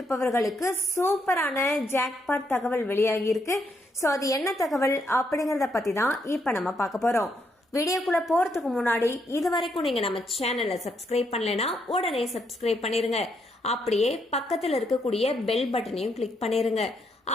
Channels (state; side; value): normal; both; correlation 0.76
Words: சூப்பரான ஜாக்பாட் தகவல் வெளியாகி இருக்கு. சோ அது என்ன தகவல் அப்படிங்கறத பத்தி தான் இப்ப நம்ம பார்க்க போறோம். வீடியோக்குள்ள போறதுக்கு முன்னாடி இதுவரைக்கும் நீங்க நம்ம சேனலை சப்ஸ்கிரைப் பண்ணலைன்னா உடனே சப்ஸ்கிரைப் பண்ணிருங்க. அப்படியே பக்கத்துல இருக்கக்கூடிய பெல் பட்டனையும் கிளிக் பண்ணிருங்க.